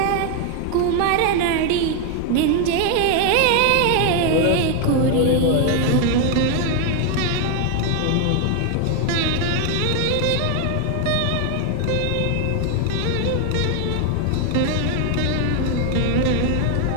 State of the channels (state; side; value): different; both; correlation 0.01